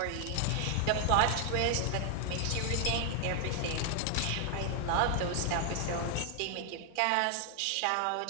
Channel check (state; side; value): different; both; correlation 0.00